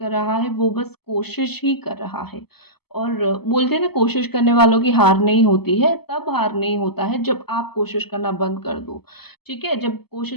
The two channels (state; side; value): late; right; 0.97 ms